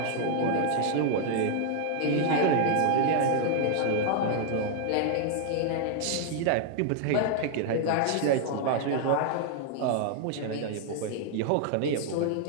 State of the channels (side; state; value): both; different; correlation 0.00